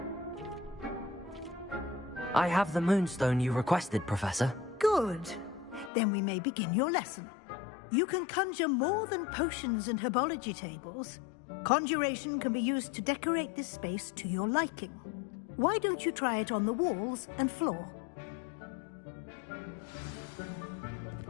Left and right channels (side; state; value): right; drops out; at 5.9 s